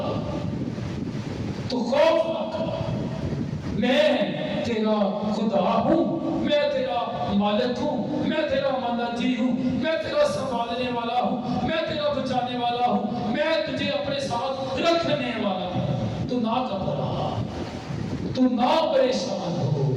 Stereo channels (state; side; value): identical; both; correlation 1.00